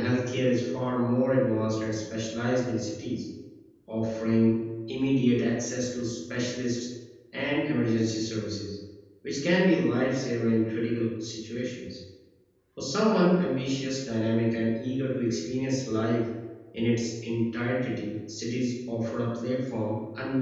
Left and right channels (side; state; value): both; identical; correlation 1.00